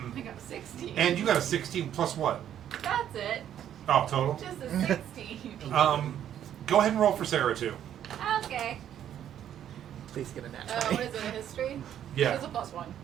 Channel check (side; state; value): left; quieter; 10.4 dB